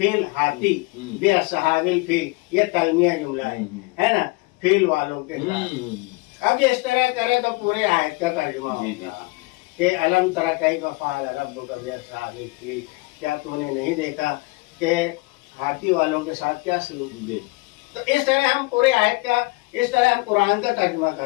हाथी, बिअस्हाबिल फील ये तलमिया जुमला है ना, फील वालों के साथ। अब इस तरह करे तो पूरे आयत का तर्जुमा होगा कि अलम तरा कैफ़ फ़अल रब्बुका बिअस्हाबिल फील, क्या तूने नहीं देखा कि हाथी वालों के साथ क्या सलूक किया। तो इस तरह हम पूरे आयत का, इस तरह हम कुरान का तर्जुमा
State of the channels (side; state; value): right; quieter; 24.8 dB